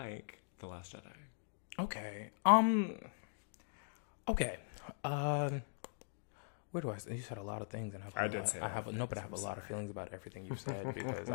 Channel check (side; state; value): right; silent; digital silence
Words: The Last Jedi. Okay. Okay. Where do I? You said a lot of things, and I have a lot of feelings about everything you said because